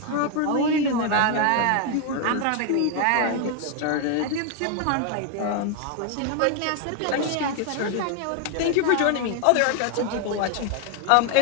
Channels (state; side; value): different; both; correlation 0.01